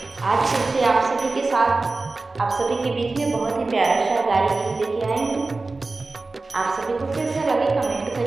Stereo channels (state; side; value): quieter; left; 3.5 dB